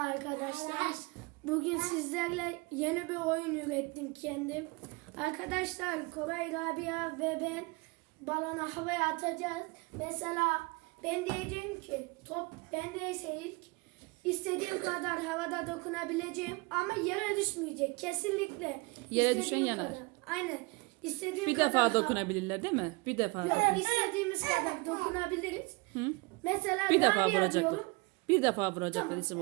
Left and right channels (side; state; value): left; quieter; 27.0 dB